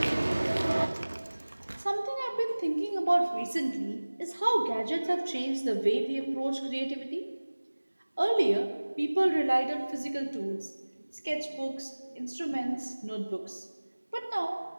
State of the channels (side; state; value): both; inverted; correlation -1.00